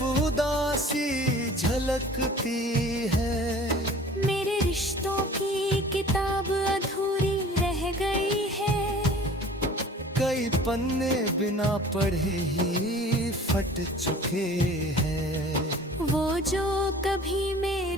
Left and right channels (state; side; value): normal; both; correlation 0.46